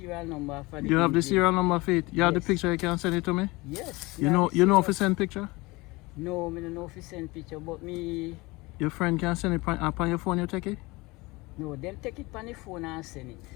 number for the You have the engine. serial number for it? You have the Yes. picture, you can send it to me? Yes. You have know the if you serial- send picture? No, me don't know if you send picture, but me, Your friend can send it up on your phone, you take it? no, them take it on the phone and send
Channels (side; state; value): right; quieter; 23.0 dB